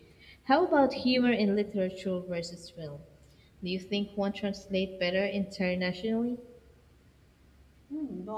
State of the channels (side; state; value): both; identical; correlation 1.00